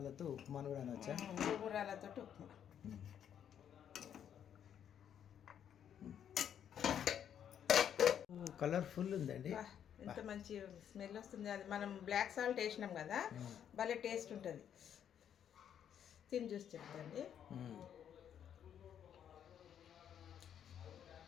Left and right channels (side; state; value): right; quieter; 9.2 dB